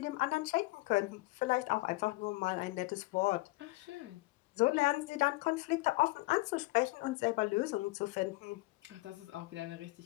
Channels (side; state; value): right; quieter; 21.9 dB